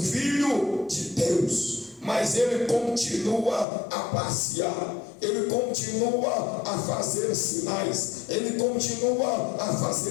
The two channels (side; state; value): right; drops out; at 3.7 s